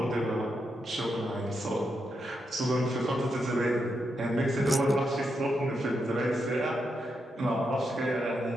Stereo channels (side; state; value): both; normal; correlation 0.83